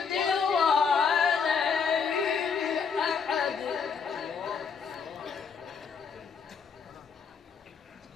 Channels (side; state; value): right; quieter; 5.9 dB